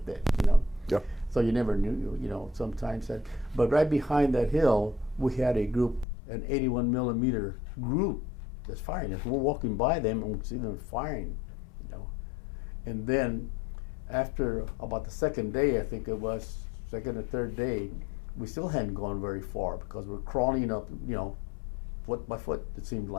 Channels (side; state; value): right; drops out; at 6.1 s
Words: that, you know. Yeah. So you never knew, you know, sometimes that. But right behind that hill, we had a group, an 81 millimeter group that's firing. As we're walking by them and we see them firing, you know. And then after about the second day, I think it was, second or third day, we still hadn't gone very far because we're crawling up, you know, foot by foot, it seemed